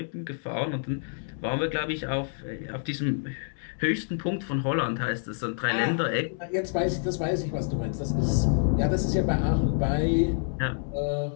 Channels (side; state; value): right; silent; digital silence